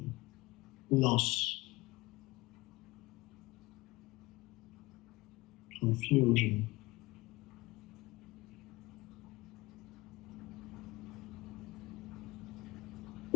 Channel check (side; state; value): right; quieter; 21.1 dB